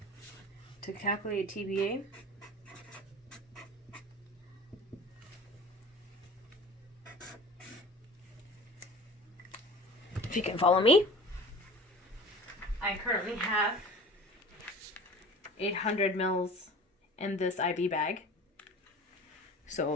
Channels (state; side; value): normal; both; correlation 0.40